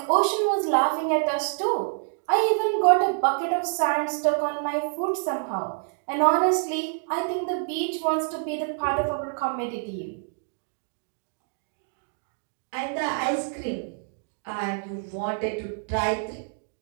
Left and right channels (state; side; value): silent; left; digital silence